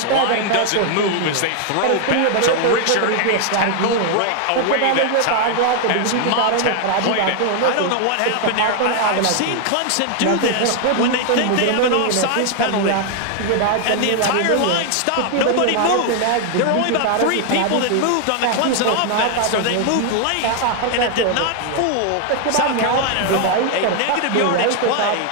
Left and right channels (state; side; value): different; both; correlation 0.00